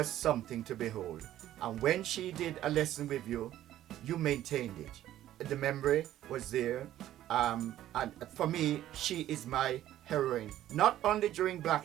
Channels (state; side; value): quieter; left; 12.9 dB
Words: something to behold. And when she did a lesson with you, you maintained it. The memory was there. And for me, she is my heroine, not only during Black